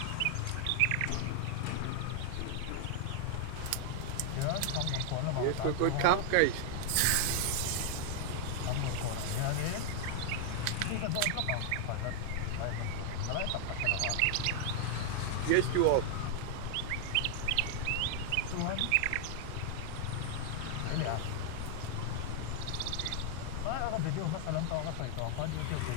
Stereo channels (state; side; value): different; both; correlation 0.00